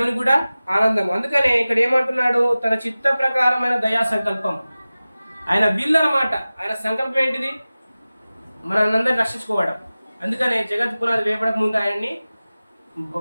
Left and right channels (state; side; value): inverted; both; correlation -0.97